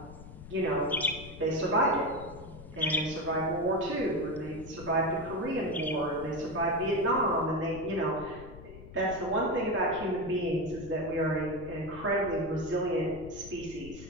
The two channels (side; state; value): left; noise; rumble, 15 dB below the sound